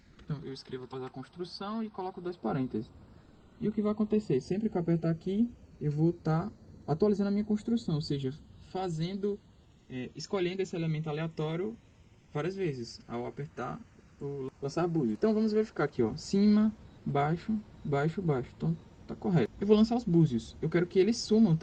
Então, eu escrevo atualizar a construção e coloco 2 parênteses. E o que vai acontecer? Sempre que eu apertar aqui, eu vou estar atualizando a minha construção, ou seja, escolhendo esse elemento aleatório várias vezes, ao apertar o lançar búzio. Então vamos verificar aqui, ó, cima, baixo, baixo, baixo. Então tá correto. Eu vou lançar os búzios. Eu quero que eles sumam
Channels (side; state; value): both; identical; correlation 1.00